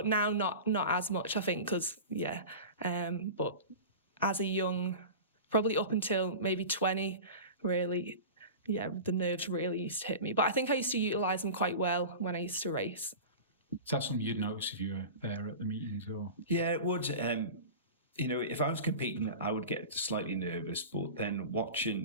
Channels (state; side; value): inverted; both; correlation -0.32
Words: now, not as much, I think, because but as a young, probably up until maybe 20, really, the nerves really used to hit me. But I think I used to utilise them quite well when I used to race. Is that something you'd notice if you were there at the meetings, or? Yeah, it would. If I was competing, I would get slightly nervous, but then